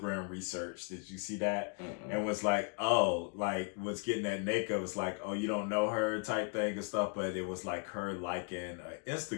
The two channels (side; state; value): right; quieter; 36.4 dB